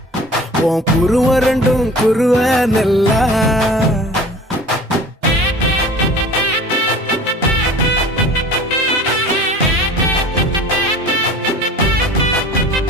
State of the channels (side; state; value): both; normal; correlation 0.43